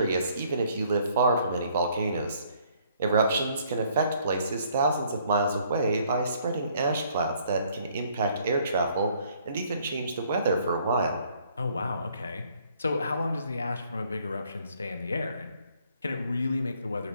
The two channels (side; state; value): both; inverted; correlation -0.63